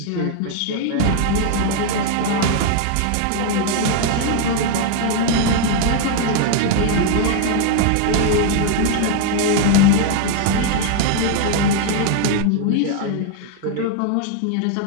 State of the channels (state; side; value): different; both; correlation 0.01